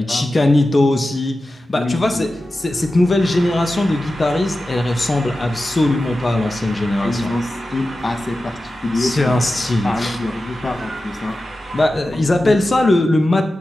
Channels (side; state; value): both; normal; correlation 0.93